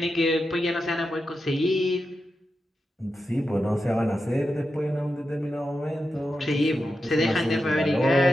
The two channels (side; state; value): both; normal; correlation 0.89